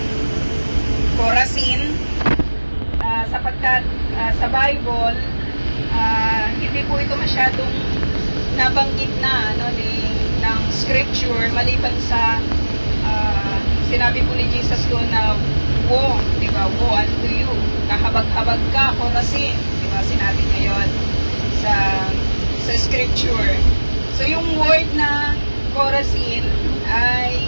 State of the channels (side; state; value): both; inverted; correlation -1.00